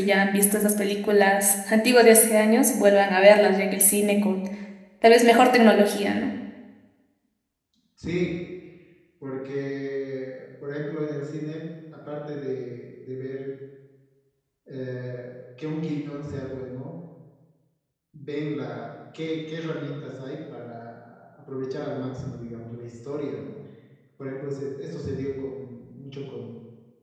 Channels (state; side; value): identical; both; correlation 1.00